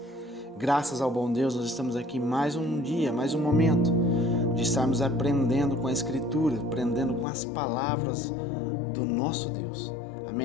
Graças ao bom Deus, nós estamos aqui mais um dia, mais um momento de estarmos aprendendo com a Escritura, aprendendo com as palavras do nosso Deus.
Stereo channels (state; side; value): drops out; right; at 7.2 s